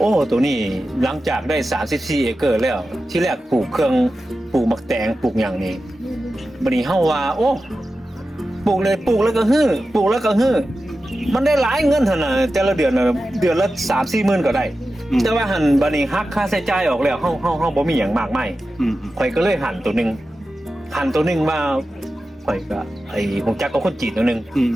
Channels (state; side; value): normal; both; correlation 0.93